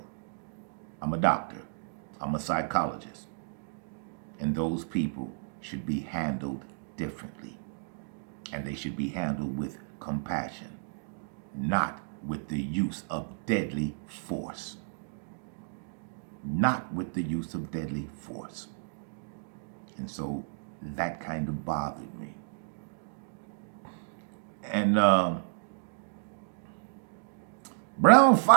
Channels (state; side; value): silent; left; digital silence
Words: I'm a doctor. I'm a psychologist. And those people should be handled differently. And they should be handled with compassion, not with the use of deadly force. Not with the use of deadly force. And so that kind of bothered me. And Brown